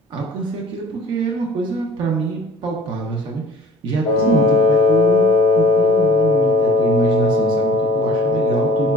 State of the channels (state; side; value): normal; both; correlation 0.48